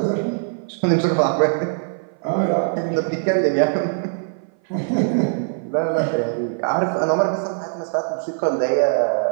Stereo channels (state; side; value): silent; left; 58 dB below the other